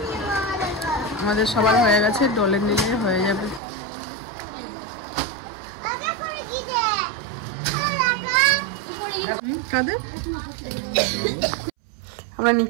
আমাদের সবার হয়ে গেছে, ডলের নিলে হয়ে যাবে। আমরা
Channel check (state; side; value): drops out; left; at 3.6 s